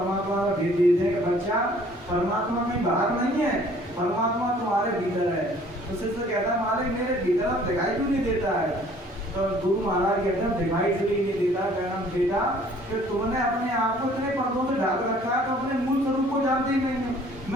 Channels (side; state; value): both; normal; correlation 0.56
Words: का भेद दे देंगे। बच्चा परमात्मा में बाहर नहीं है, परमात्मा तुम्हारे भीतर है। तो शिष्य कहता है मालिक मेरे भीतर अब दिखाई क्यों नहीं देता है? तो गुरु महाराज कहते हैं दिखाई इसलिए नहीं देता कहना बेटा कि तुमने अपने आप को इतने पर्दों से ढाक रखा है, तो अपने मूल स्वरूप को जानते ही नहीं है।